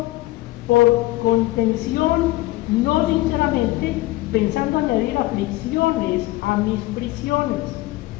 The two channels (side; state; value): right; quieter; 18.4 dB